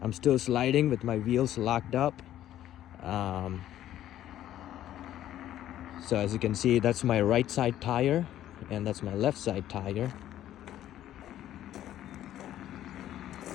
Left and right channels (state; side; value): quieter; right; 12.4 dB